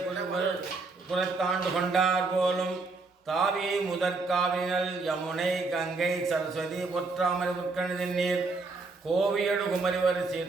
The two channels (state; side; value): quieter; left; 3.9 dB